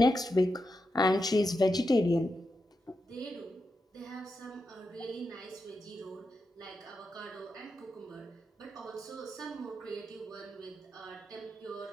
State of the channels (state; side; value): normal; both; correlation 0.87